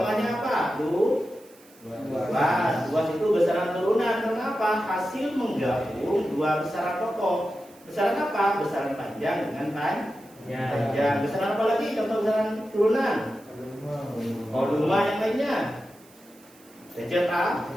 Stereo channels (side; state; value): right; noise; hiss, 26 dB below the sound